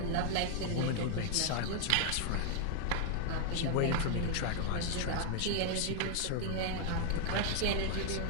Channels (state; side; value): different; both; correlation 0.00